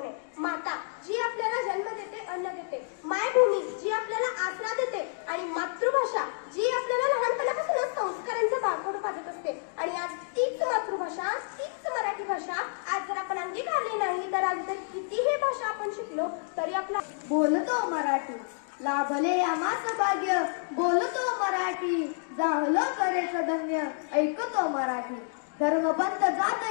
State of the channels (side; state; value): right; silent; digital silence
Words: आहे. माता जी आपल्याला जन्म देते, अन्न देते. मायभूमी जी आपल्याला आसरा देते. आणि मातृभाषा जी आपल्याला लहानपणापासूनच संस्कारांचं बाळकडू पाजत असते. आणि आज तीच मातृभाषा, तीच मराठी भाषा आज जर आपण अंगीकारली नाही, तर आज जर कितीही भाषा आपण शिकलो तरी आपला बोलतो मराठी, लाभले आम्हास भाग्य. बोलतो मराठी, जाहलो करेच धन्य. ऐकतो मराठी, धर्मपंथ जात